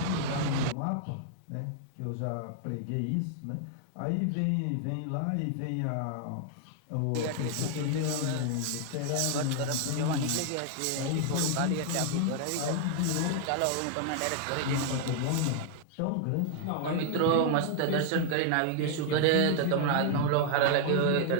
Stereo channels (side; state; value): both; different; correlation 0.00